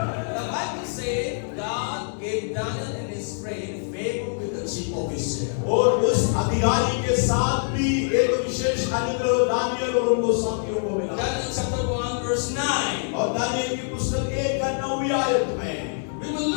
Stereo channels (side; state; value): right; silent; 62 dB below the other